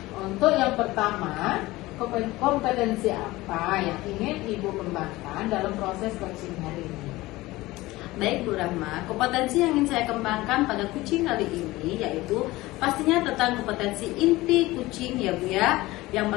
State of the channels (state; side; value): quieter; right; 19.1 dB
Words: Untuk yang pertama, kompetensi apa yang ingin Ibu kembangkan dalam proses coaching hari ini? Baik Bu Rahma, kompetensi yang ingin saya kembangkan pada kucing kali ini yaitu pastinya tentang kompetensi inti kucing ya Bu ya.